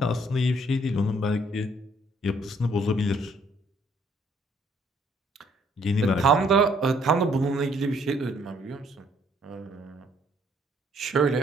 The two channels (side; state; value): both; normal; correlation 0.65